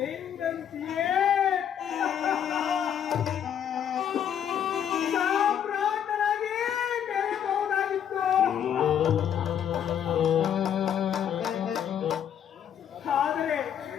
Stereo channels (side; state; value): right; quieter; 9.1 dB